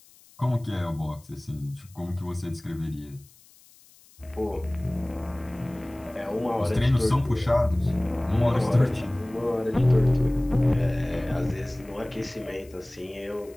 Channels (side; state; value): left; noise; hiss, 26 dB below the sound